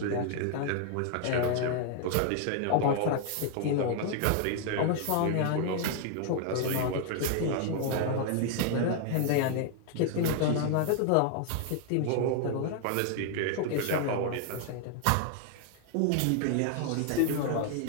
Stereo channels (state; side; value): different; both; correlation 0.00